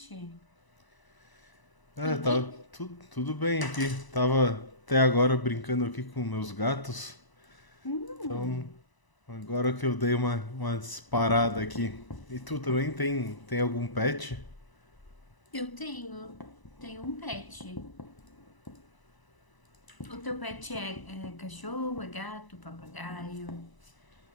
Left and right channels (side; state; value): right; late; 1.0 ms